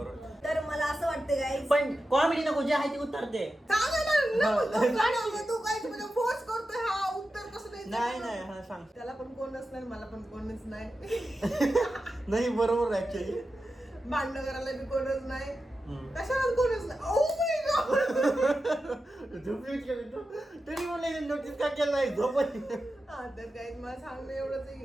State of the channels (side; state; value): both; normal; correlation 0.91